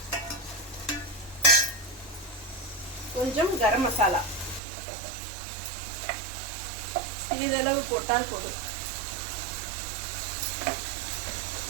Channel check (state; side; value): drops out; left; at 4.6 s